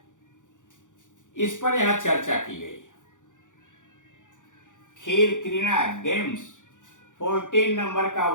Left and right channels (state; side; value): late; right; 0.87 ms